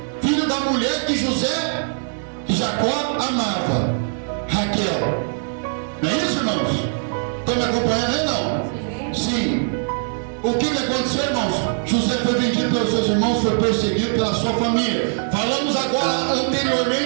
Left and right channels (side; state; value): left; silent; 65 dB below the other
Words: Filho da mulher que Jacó amava, Raquel. Não é isso, irmãos? Estão me acompanhando aí, não? Sim. O que aconteceu, irmãos? José foi vendido pelos seus irmãos, foi perseguido pela sua família. Falamos agora